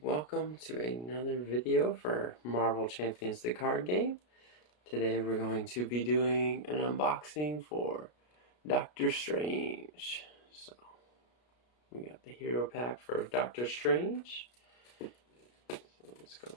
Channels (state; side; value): late; right; 33 ms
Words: welcome to another video for Marvel Champions the card game. Today we're going to be doing an unboxing for Doctor Strange. So we got the hero pack for Doctor Strange. So let's go